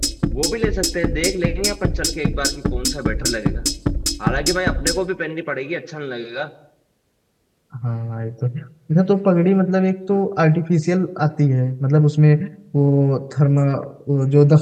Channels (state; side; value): identical; both; correlation 1.00